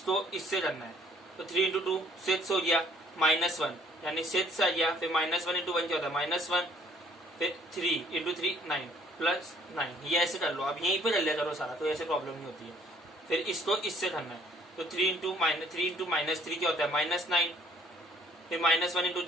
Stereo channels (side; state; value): both; normal; correlation 0.60